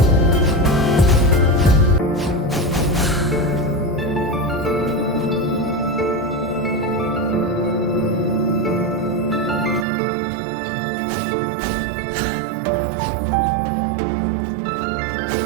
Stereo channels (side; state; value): left; drops out; at 9.9 s